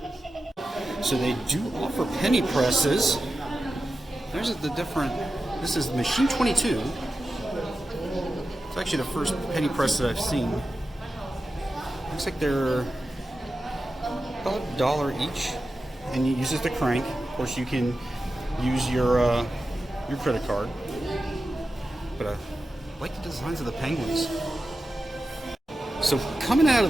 So they do offer penny presses. There's the different. This is machine 22. It's actually the first penny press that I've seen. Looks like they're about $1 each, and you use it to crank. Of course, you can use your credit card. But I like the designs of the penguins. So coming out of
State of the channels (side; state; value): both; normal; correlation 0.92